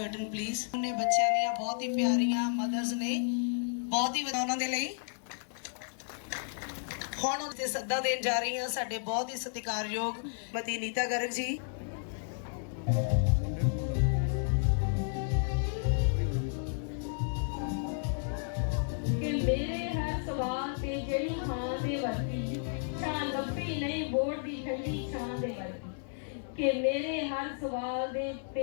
please. ਉਹਨੇ ਬੱਚਿਆਂ ਦੀਆਂ ਬਹੁਤ ਹੀ ਪਿਆਰੀਆਂ ਮਦਰਸ ਨੇ, ਬਹੁਤ ਹੀ ਉਹਨਾਂ ਦੇ ਲਈ ਹੁਣ ਉਹਦੇ ਸੱਦਾ ਦੇਣ ਜਾ ਰਹੀ ਹਾਂ ਸਾਡੇ ਬਹੁਤ ਹੀ ਸਤਿਕਾਰਯੋਗ ਮਤੀ ਨੀਤਾ ਗਰਗ ਜੀ। ਕਿ ਮੇਰੇ ਹਰ ਸਵਾਲ ਤੇ ਜਿਹੜੀ ਹਾਂ ਦੇ ਵਰਗੀ ਛਾਂ ਲੱਭੀ ਨਹੀਂ ਬੋੜ ਦੀ ਠੰਡੀ ਛਾਂ ਦੇ ਵਰਗੀ, ਕਿ ਮੇਰੇ ਹਰ ਸਵਾਲ ਦੇ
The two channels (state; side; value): silent; right; digital silence